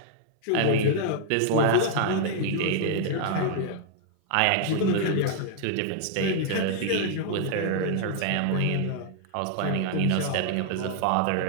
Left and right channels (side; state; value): both; different; correlation -0.01